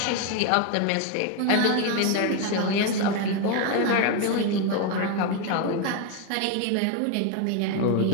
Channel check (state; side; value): different; both; correlation 0.01